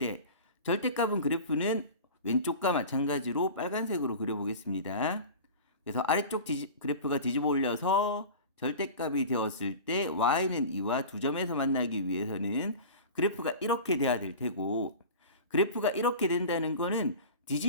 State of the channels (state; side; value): inverted; both; correlation -0.35